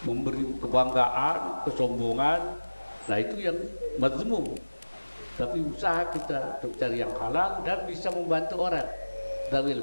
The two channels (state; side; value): inverted; both; correlation -1.00